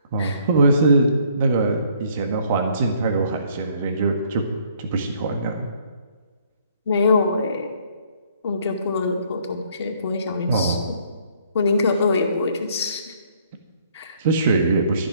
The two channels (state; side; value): inverted; both; correlation -0.63